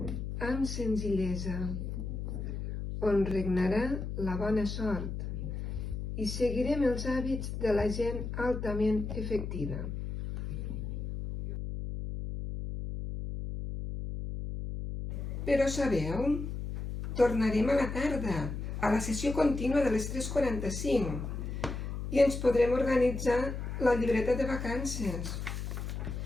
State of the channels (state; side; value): noise; left; hum, 5 dB below the sound